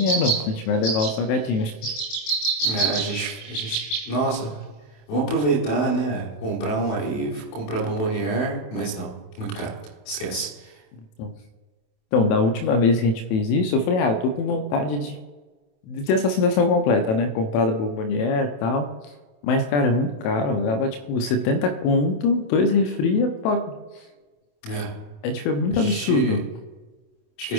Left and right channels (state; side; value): late; right; 27 ms